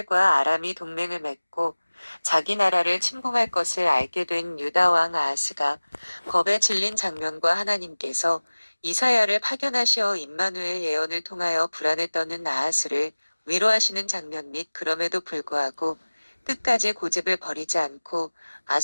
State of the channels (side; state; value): both; inverted; correlation -1.00